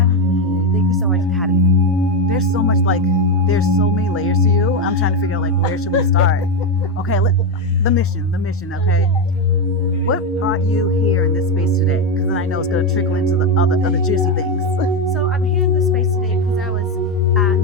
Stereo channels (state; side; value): normal; both; correlation 0.09